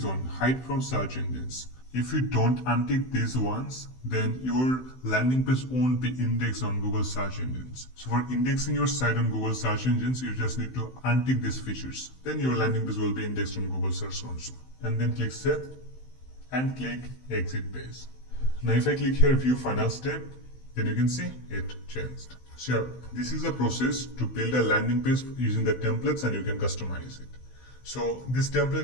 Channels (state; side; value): late; right; 16 ms